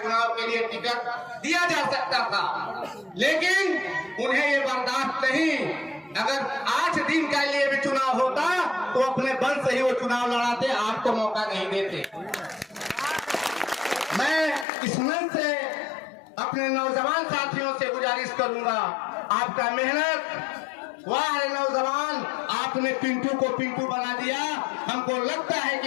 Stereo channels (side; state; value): right; drops out; at 14.7 s